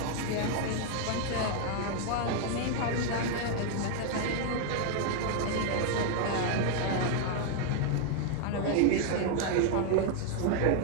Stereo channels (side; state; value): both; different; correlation 0.00